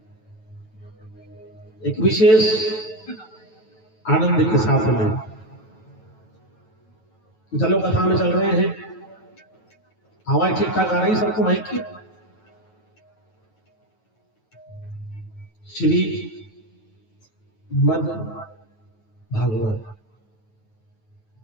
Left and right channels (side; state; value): right; late; 9.2 ms